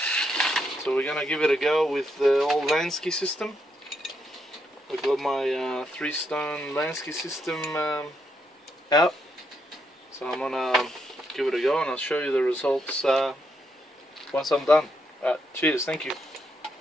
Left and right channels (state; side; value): normal; both; correlation 0.79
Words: So we're gonna give it a go with the old Lansky system. I've got my 3-stone Lansky system out, so I'm gonna give it a go and I'll show you the results once I'm done. Cheers, thank you.